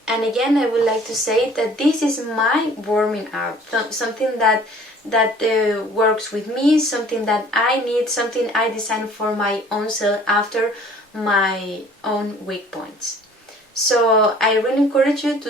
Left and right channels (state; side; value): normal; both; correlation 0.52